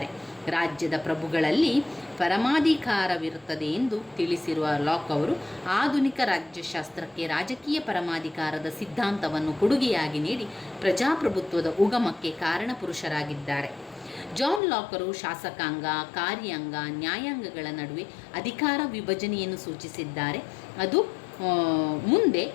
ರಾಜ್ಯದ ಪ್ರಭುಗಳಲ್ಲಿ ಪರಮಾಧಿಕಾರವಿರುತ್ತದೆ ಎಂದು ತಿಳಿಸಿರುವ ಲಾಕ್ ಅವರು ಆಧುನಿಕ ರಾಜ್ಯಶಾಸ್ತ್ರಕ್ಕೆ ರಾಜಕೀಯ ಪರಮಾಧಿಕಾರದ ಸಿದ್ಧಾಂತವನ್ನು ಕೊಡುಗೆಯಾಗಿ ನೀಡಿ ಪ್ರಜಾಪ್ರಭುತ್ವದ ಉಗಮಕ್ಕೆ ಕಾರಣಪುರುಷರಾಗಿದ್ದಾರೆ. ಜಾನ್ ಲಾಕರು ಶಾಸಕಾಂಗ, ಕಾರ್ಯಾಂಗ, ನ್ಯಾಯಾಂಗಗಳ ನಡುವೆ ಅಧಿಕಾರ ವಿಭಜನೆಯನ್ನು ಸೂಚಿಸಿದ್ದಾರೆ. ಅದು ಮುಂದೆ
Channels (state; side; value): drops out; right; at 14.6 s